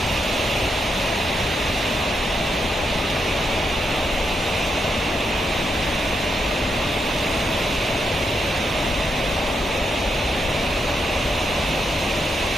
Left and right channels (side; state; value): both; normal; correlation 0.82